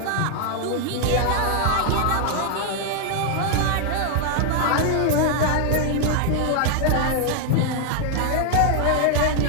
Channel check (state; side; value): different; both; correlation 0.00